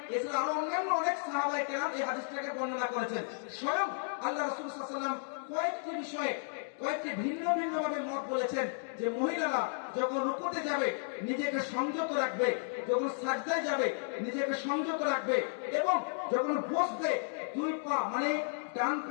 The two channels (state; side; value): silent; right; digital silence